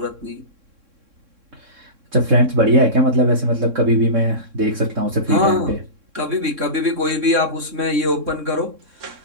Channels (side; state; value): left; late; 3.6 ms